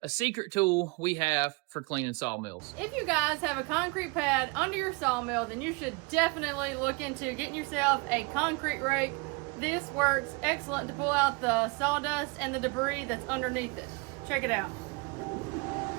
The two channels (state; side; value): quieter; left; 28.5 dB